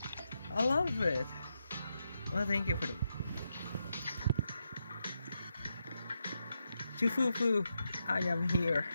I love it. Well, thank you for the... Shifu, I am here.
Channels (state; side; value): inverted; both; correlation -0.84